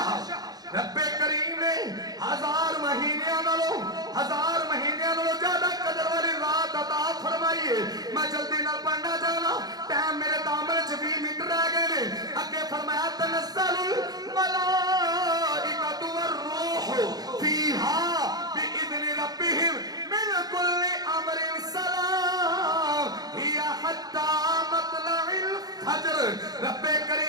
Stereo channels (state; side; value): late; left; 0.19 ms